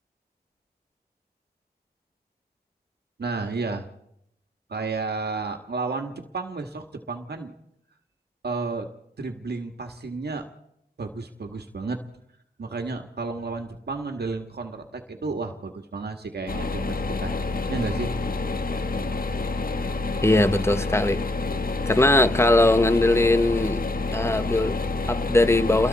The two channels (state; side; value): normal; both; correlation 0.71